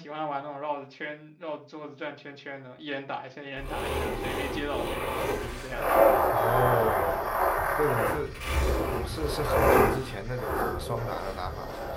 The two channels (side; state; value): both; identical; correlation 1.00